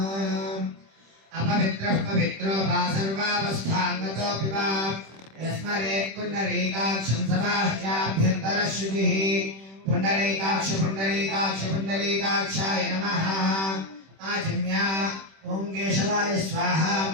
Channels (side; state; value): left; late; 26 ms